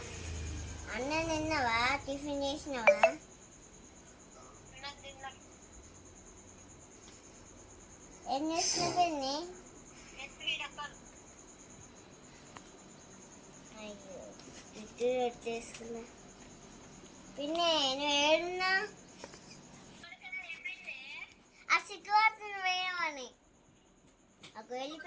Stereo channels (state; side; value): identical; both; correlation 1.00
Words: అన్న తిన్నావా? టిఫిన్ చేసినావా? ఏం చేస్తున్నావు పిన్ని? అయ్యో ఇటు వచ్చేసుకున్నా. పిన్ని నువ్వు ఏడున్నా? ఆ సిగ్గుపడుతుంది వేయమని అక్కడ